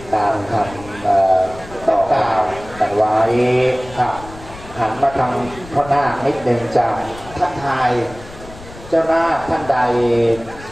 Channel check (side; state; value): left; noise; rumble, 17 dB below the sound